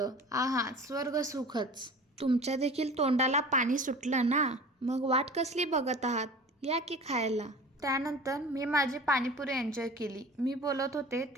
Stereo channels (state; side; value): normal; both; correlation 0.40